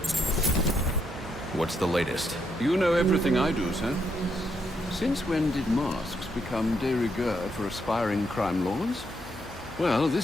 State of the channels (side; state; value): both; normal; correlation 0.77